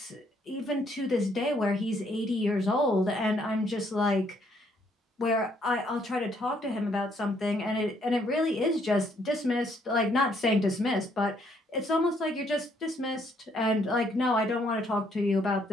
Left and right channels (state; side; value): normal; both; correlation 0.69